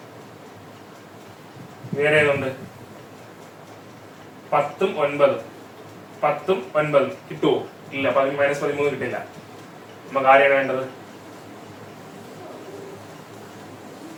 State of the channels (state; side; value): identical; both; correlation 1.00